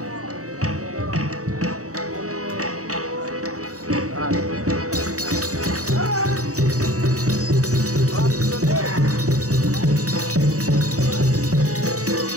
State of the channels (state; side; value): late; left; 0.66 ms